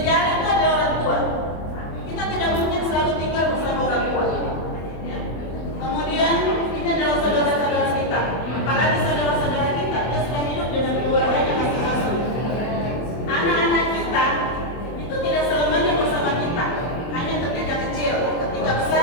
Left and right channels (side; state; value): right; late; 24 ms